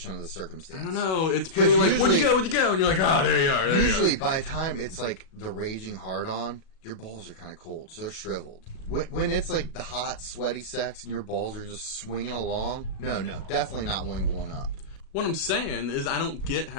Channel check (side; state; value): right; late; 37 ms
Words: of the circumstance. I don't know. It's pretty like, where'd you go? Where'd you go? And you're like, oh, there you are. There Usually, you are. by the time it's like the raging hard on, your balls are kind of cold, so they're shriveled. When it's like the hot, sweaty sex and your balls are just swinging along, no, definitely not one going up. What I'm saying is I don't get